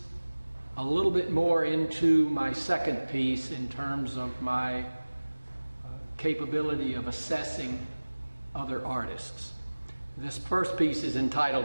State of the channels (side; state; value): both; inverted; correlation -1.00